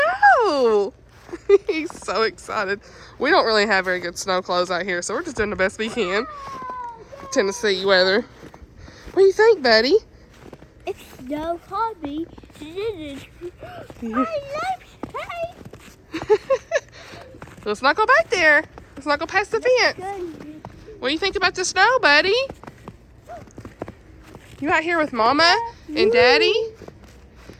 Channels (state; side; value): identical; both; correlation 1.00